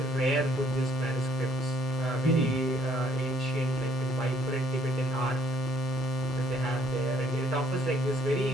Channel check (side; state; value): both; normal; correlation 0.64